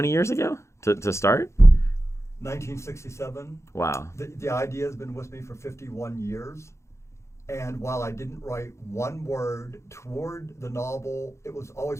years ago to start? 1967. Wow. The idea has been with me for 51 years. And while I didn't write one word toward the novel, it was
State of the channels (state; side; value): late; right; 0.14 ms